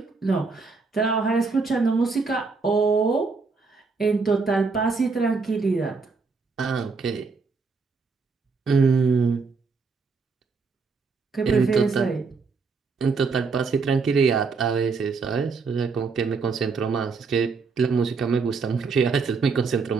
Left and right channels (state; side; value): quieter; left; 4.6 dB